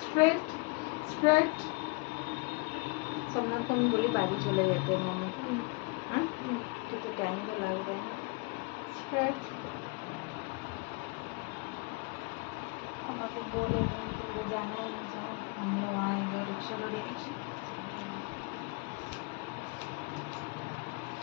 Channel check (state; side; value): quieter; right; 29.2 dB